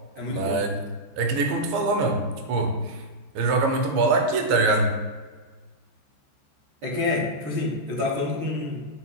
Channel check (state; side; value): late; left; 15 ms